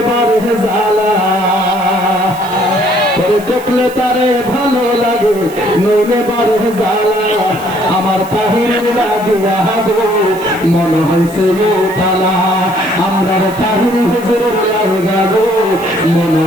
বারে জ্বালা, তোরে দেখলে তারে ভালো লাগে নইলে বারে জ্বালা। আমার তাহিরের লাগিয়া গো মনে হইছে তালা, আমরার তাহির হুজুরের লাগা গো মনে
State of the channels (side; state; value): right; noise; hiss, 19 dB below the sound